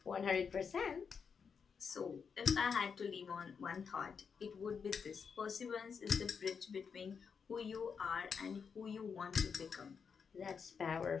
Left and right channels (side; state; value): right; quieter; 6.2 dB